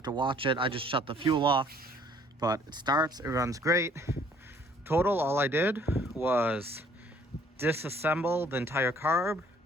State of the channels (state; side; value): normal; both; correlation 0.59